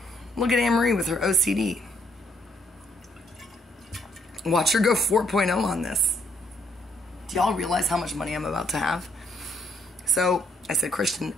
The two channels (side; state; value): both; normal; correlation 0.69